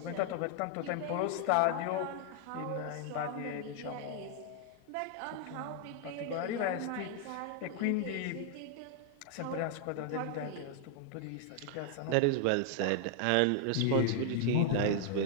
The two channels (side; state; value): both; different; correlation 0.00